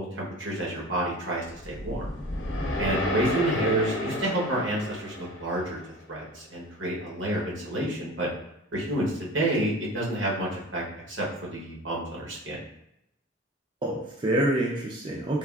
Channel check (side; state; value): both; normal; correlation 0.38